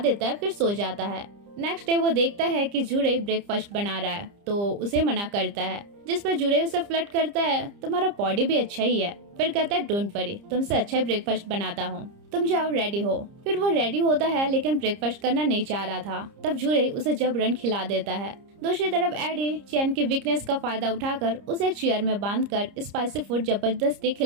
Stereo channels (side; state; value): left; late; 30 ms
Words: है, फिर सो जाता है। नेक्स्ट डे वो देखता है कि जुरई ब्रेकफास्ट बना रहा है तो उसे मना करता है, जिस पर जुरई उसे फ्लर्ट करता है, तुम्हारा बॉडी भी अच्छा ही है। फिर कहता है डोंट वरी, तुमसे अच्छा ही ब्रेकफास्ट बनाता हूँ, तुम जाओ रेडी हो। फिर वो रेडी होता है लेकिन ब्रेकफास्ट करना नहीं चाह रहा था। तब जुरई उसे जबरन खिला देता है। दूसरी तरफ एडी चैन की वीकनेस का फायदा उठाकर उसे एक चेयर में बांधकर स्पाइसी फूड जबरदस्ती